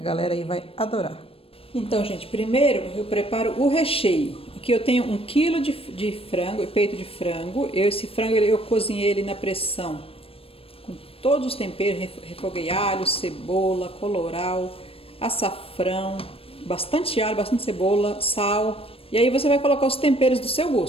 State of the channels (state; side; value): late; right; 0.28 ms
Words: aí vai adorar. Então, gente, primeiro eu preparo o recheio. Aqui eu tenho 1 kg de frango, peito de frango. Esse frango eu cozinhei ele na pressão com todos os temperos, refoguei alho, cebola, colorau, açafrão, bastante alho, bastante cebola, sal. E aí você vai colocar os temperos do seu